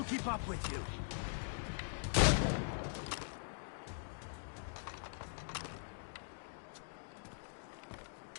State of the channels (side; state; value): right; silent; digital silence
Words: keep up with you.